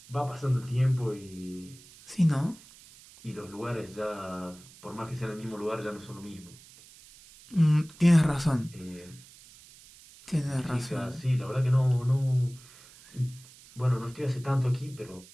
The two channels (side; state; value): right; noise; hiss, 22 dB below the sound